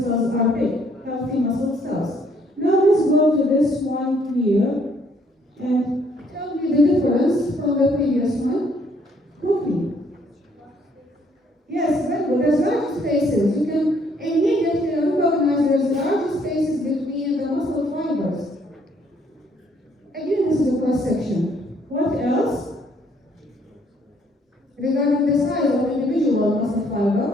cells are big, healthy muscle cells. Now let's go to this one here and tell me the difference from the previous one. Quickly. Yes, very good. There's large spaces. You can immediately recognize there's large spaces between the muscle fibers. Again, this is a cross section. What else? Regarding the size of individual muscle fiber,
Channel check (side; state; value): both; normal; correlation 0.66